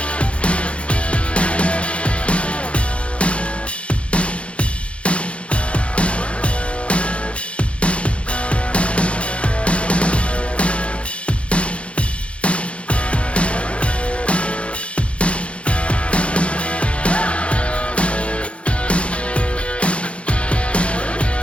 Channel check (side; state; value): right; late; 0.061 ms